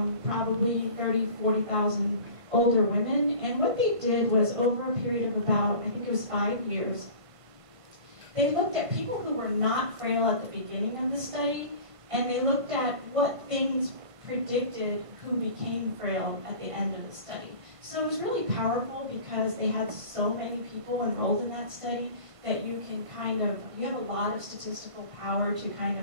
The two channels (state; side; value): late; left; 1.5 ms